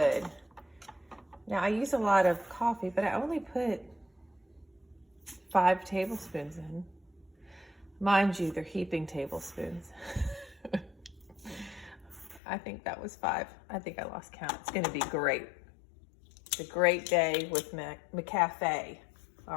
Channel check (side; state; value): right; drops out; at 12.4 s